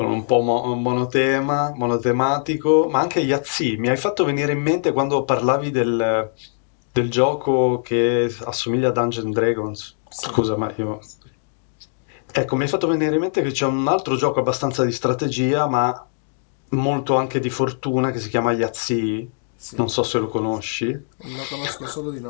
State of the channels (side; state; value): right; silent; digital silence